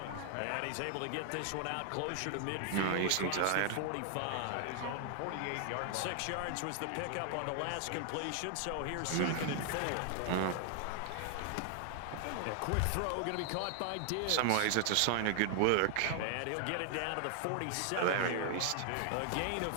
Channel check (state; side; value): different; both; correlation 0.00